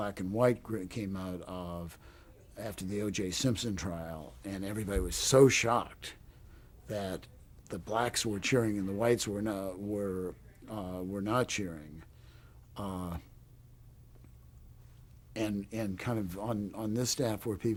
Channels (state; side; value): identical; both; correlation 1.00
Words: and White came out of after the O.J. Simpson trial, and everybody was so shocked that the blacks were cheering and the whites were not cheering. Uh, and kind of on this staff where